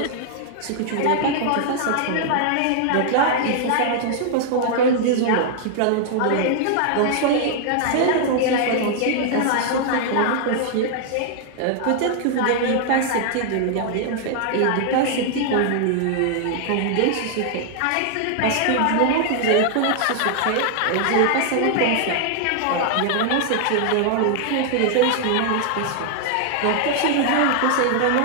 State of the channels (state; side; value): different; both; correlation 0.00